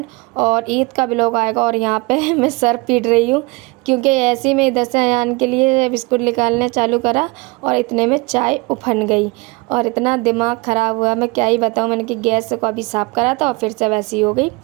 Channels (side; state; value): left; quieter; 25.8 dB